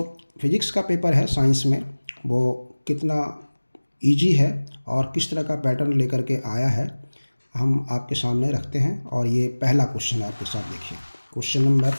फिजिक्स का पेपर है साइंस में, वो कितना इजी है और किस तरह का पैटर्न लेकर के आया है, हम आपके सामने रखते हैं। और ये पहला क्वेश्चन आपके साथ देखिए, क्वेश्चन नंबर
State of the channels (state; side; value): inverted; both; correlation -1.00